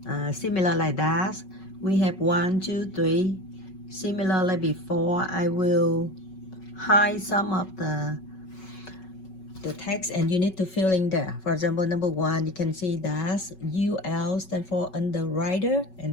similar like that. We have 1, 2, 3. Similar like before, I will hide some of the text and you need to fill in there. For example, number 1, you can see that UL stand for underwriter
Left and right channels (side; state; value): right; late; 5.4 ms